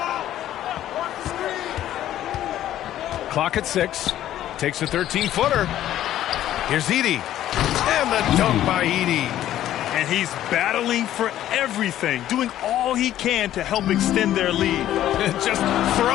Clock at 6. Takes a 13-footer. Here's Edey. And the dunk by Edey. And he's battling for everything, doing all he can to help extend their lead. Just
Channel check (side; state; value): right; quieter; 12.5 dB